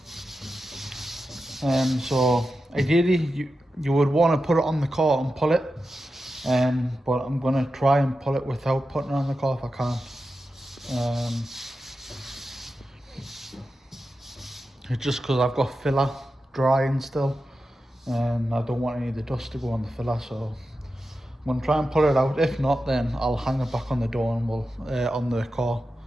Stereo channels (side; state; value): both; normal; correlation 0.91